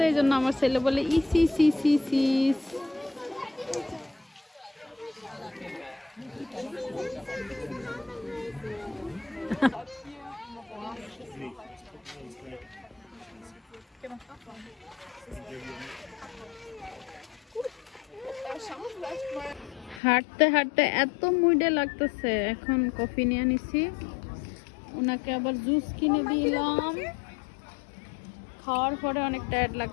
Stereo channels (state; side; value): drops out; right; at 20.0 s